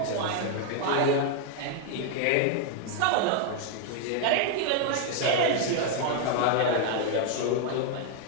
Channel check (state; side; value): different; both; correlation 0.00